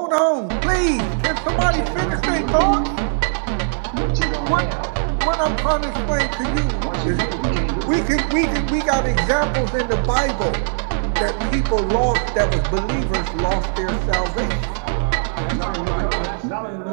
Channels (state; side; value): silent; left; 63 dB below the other